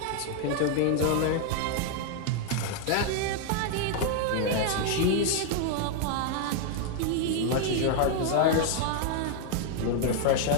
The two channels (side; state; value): both; different; correlation 0.00